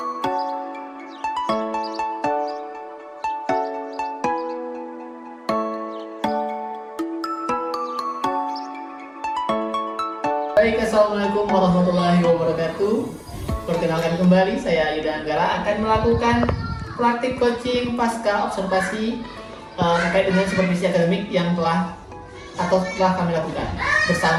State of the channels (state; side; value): identical; both; correlation 1.00